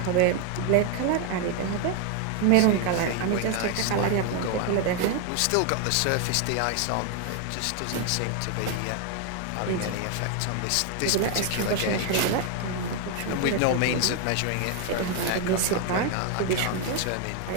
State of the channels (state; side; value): different; both; correlation 0.01